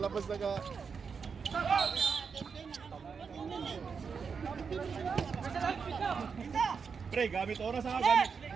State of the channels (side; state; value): left; quieter; 5.8 dB